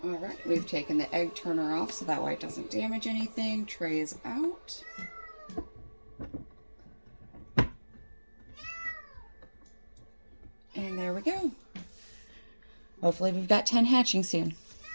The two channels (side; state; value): both; inverted; correlation -1.00